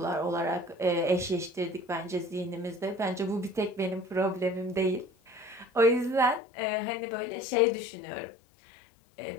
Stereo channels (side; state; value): right; drops out; at 6.4 s